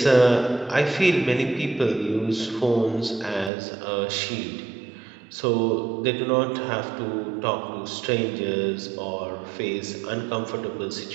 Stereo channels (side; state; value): left; drops out; at 3.5 s